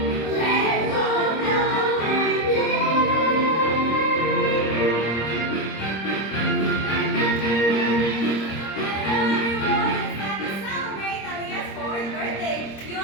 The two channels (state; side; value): late; right; 26 ms